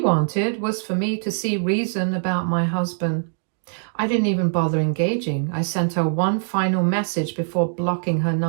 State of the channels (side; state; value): left; silent; digital silence